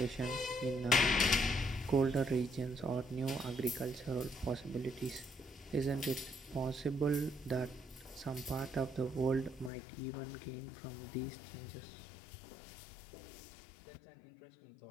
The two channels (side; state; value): right; drops out; at 9.7 s